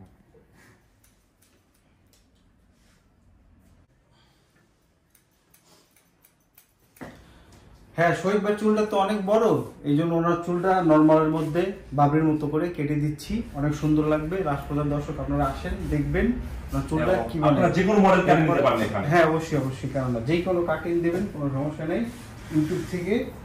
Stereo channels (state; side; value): identical; both; correlation 1.00